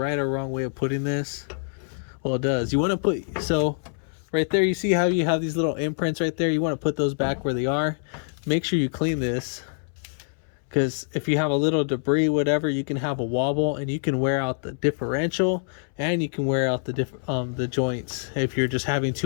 or wrong way of putting this. Well, it does. You want to put, so right there, you see how you have these little imprints right there? You want to put those back where they are. Make sure you clean this, because if you have a little debris, whatever, you can have a wobble, and you can wear out the differential, and you can wear out the joints. If you're just having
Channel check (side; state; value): right; silent; 61 dB below the other